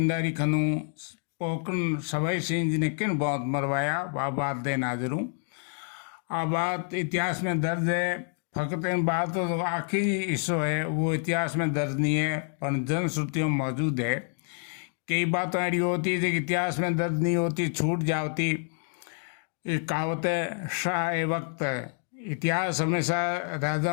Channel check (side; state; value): right; silent; 56 dB below the other